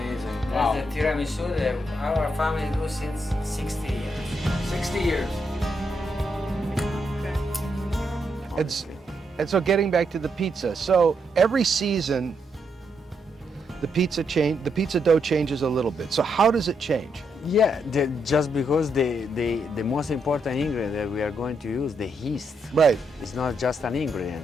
That's the tiramisu that our family do since 60 years. 60 years. And so getting back to the pizza. So every season, the pizza dough changes a little bit. So how does it change? Yeah, just because the most important ingredient that we are going to use, the yeast, Right, it's not just an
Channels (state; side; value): normal; both; correlation 0.79